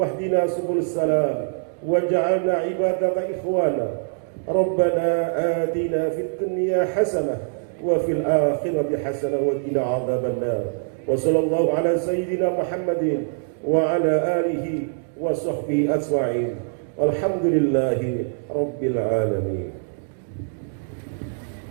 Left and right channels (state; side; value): silent; left; digital silence